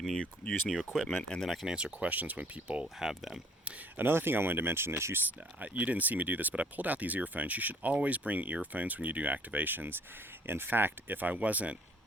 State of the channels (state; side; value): normal; both; correlation 0.58